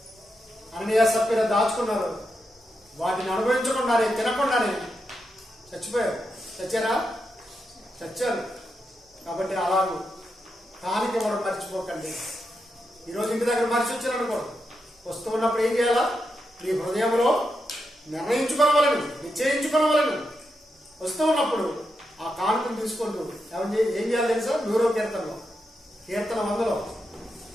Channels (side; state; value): both; normal; correlation 0.85